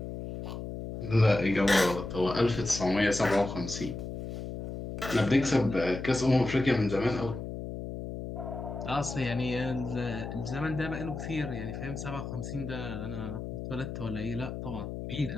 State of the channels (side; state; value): left; noise; hum, 7 dB below the sound